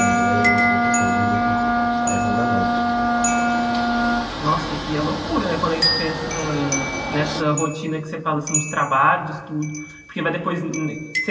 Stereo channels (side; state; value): both; identical; correlation 1.00